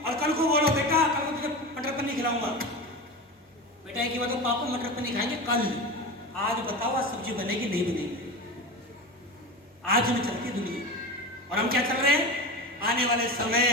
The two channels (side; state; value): both; normal; correlation 0.26